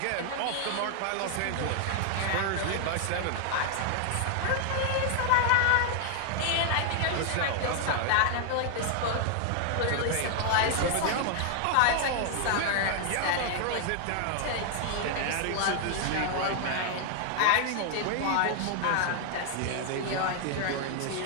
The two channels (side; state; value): both; different; correlation 0.00